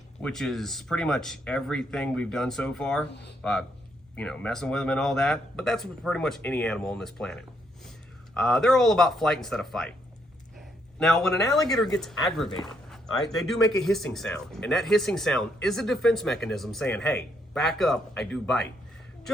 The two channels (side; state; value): both; normal; correlation 0.74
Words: which is pretty much everything we've done so far, messing with them and all that, but that's pretty much any animal on this planet. They're all about flight instead of fight. Now, when an alligator gets aggravated, all right, they do make a hissing sound, and that hissing sound is a defense mechanism saying, hey, back up, I do bite.